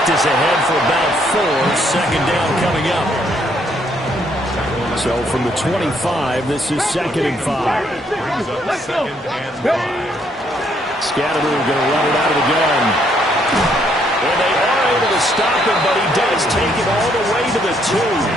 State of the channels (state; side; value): normal; both; correlation 0.70